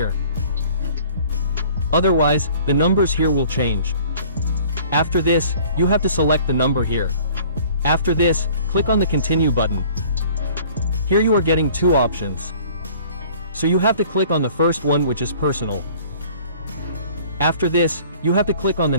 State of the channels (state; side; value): inverted; both; correlation -0.51